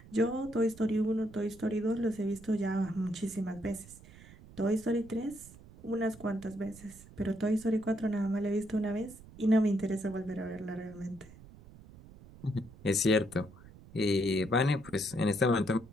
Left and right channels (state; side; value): noise; right; rumble, 20 dB below the sound